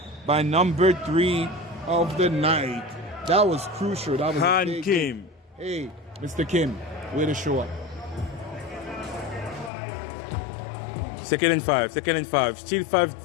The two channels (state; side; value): drops out; right; at 9.7 s